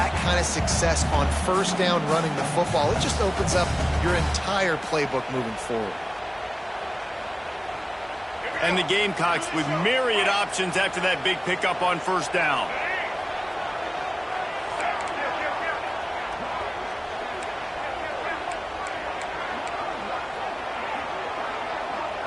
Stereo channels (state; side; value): identical; both; correlation 1.00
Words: kind of success on first down running the football, it just opens up your entire playbook moving forward. And the Gamecocks with myriad options after that big pickup on first down.